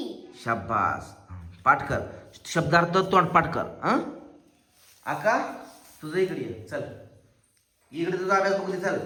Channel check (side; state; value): both; identical; correlation 1.00